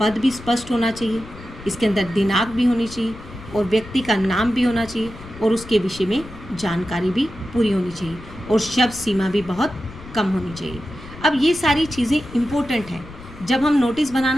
भी स्पष्ट होना चाहिए, इसके अंदर दिनांक भी होनी चाहिए और व्यक्ति का नाम भी होना चाहिए और उसके विषय में जानकारी भी पूरी होनी चाहिए और शब्द सीमा भी बहुत कम होनी चाहिए। अब ये सारी चीज़ें इम्पोर्टेंट हैं। जब हम नोटिस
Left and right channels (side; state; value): left; noise; rumble, 16 dB below the sound